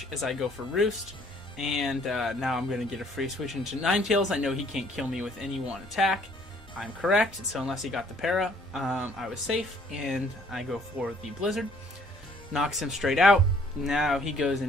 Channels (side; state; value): both; normal; correlation 0.61